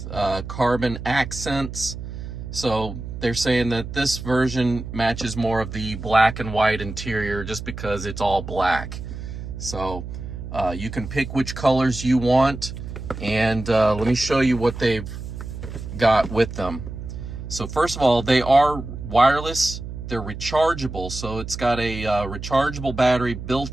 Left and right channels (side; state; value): right; noise; hum, 9 dB below the sound